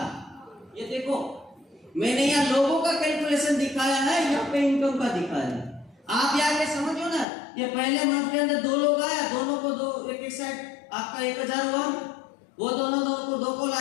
ये देखो, मैंने यहाँ लोगों का कैलकुलेशन दिखाया है, यहाँ पे इनकम का दिखाया है। आप यहाँ पे समझो ना, ये पहले मंथ के अंदर 2 लोग आया, दोनों को 2 एक साइड आपका 1000 हुआ, वो दोनों को 2 को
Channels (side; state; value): right; drops out; at 7.2 s